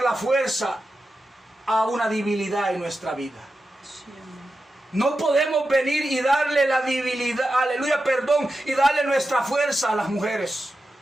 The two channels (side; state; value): both; normal; correlation 0.91